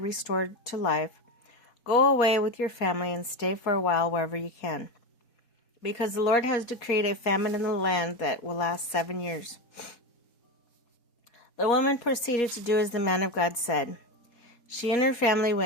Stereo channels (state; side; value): late; right; 4.2 ms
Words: restored to life, "Go away with your family and stay for a while wherever you can, because the Lord has decreed a famine in the land that will last 7 years." The woman proceeded to do as the man of God said. She and her family